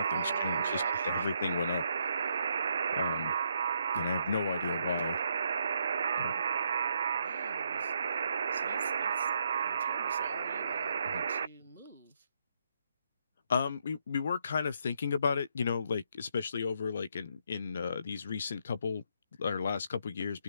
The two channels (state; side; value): inverted; both; correlation -0.75